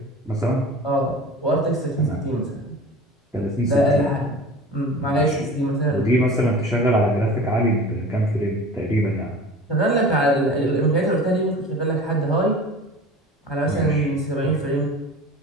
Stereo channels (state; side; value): normal; both; correlation 0.38